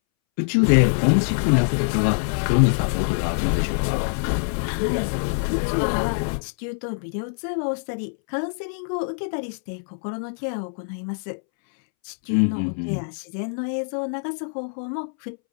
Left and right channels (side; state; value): right; silent; 63 dB below the other